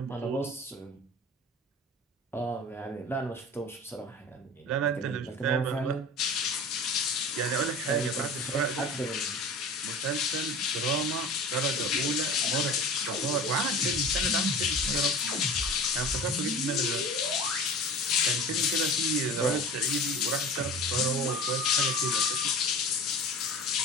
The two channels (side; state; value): both; normal; correlation 0.36